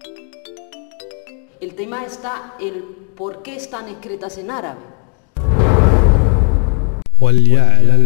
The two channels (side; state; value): right; quieter; 39.0 dB